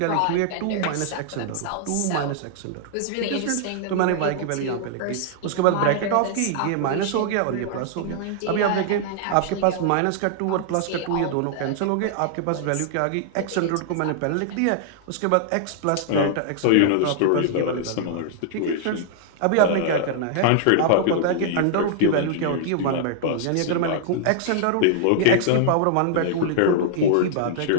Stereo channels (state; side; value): different; both; correlation -0.01